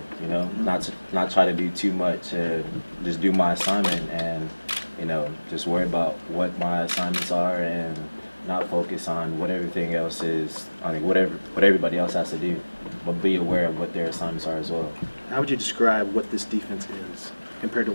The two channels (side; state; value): both; inverted; correlation -1.00